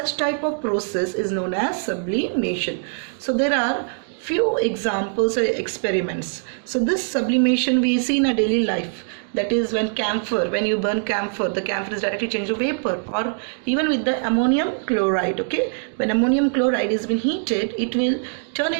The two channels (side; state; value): left; silent; digital silence